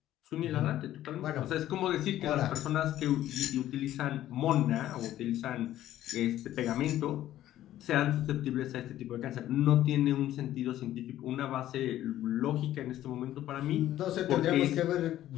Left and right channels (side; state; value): right; quieter; 13.2 dB